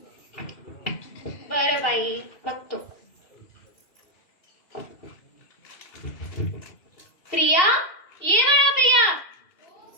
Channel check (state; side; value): late; right; 2.8 ms